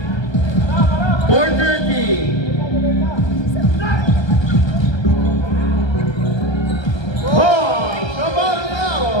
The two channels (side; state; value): right; late; 1.3 ms